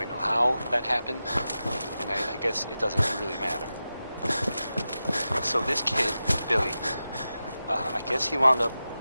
know how that happened, and I guess it doesn't really matter. So this kid, Billy, I guess he wound up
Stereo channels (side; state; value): both; inverted; correlation -0.92